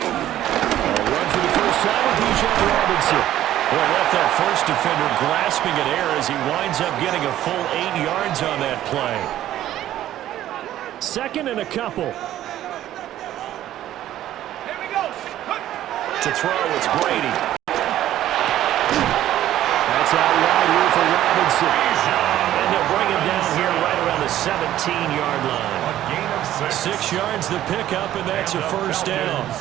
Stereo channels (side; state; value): left; quieter; 12.8 dB